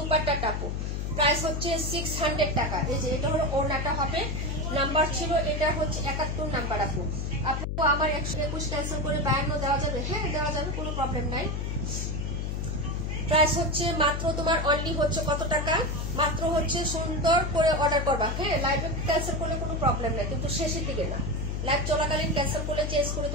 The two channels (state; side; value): noise; left; hum, 2 dB below the sound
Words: আপু, প্রাইস হচ্ছে 600 টাকা। এই যে এটা হলো ওড়নাটা হবে, নাম্বার ছিল এটা হচ্ছে 71 নাম্বার আপু। আপু আমার 121 ক্যান্সেল করে 52 দেওয়া যাবে? হ্যাঁ দেওয়া যাবে, কোনো প্রবলেম নাই। প্রাইস হচ্ছে মাত্র তোমার অনলি হচ্ছে কত টাকা, মাত্র হচ্ছে সুন্দর করে অর্ডার করবা, হ্যাঁ। লাইভে ক্যান্সেল করলে কোনো প্রবলেম নাই, কিন্তু শেষের দিকে না। লাইভ চলাকালীন ক্যান্সেল করলে চেঞ্জ করে